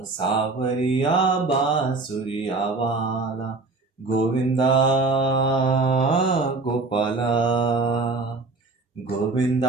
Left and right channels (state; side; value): quieter; left; 3.6 dB